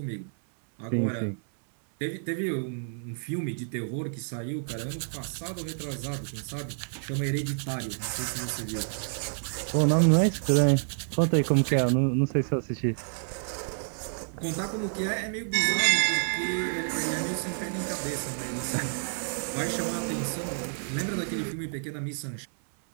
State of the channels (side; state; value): left; silent; 59 dB below the other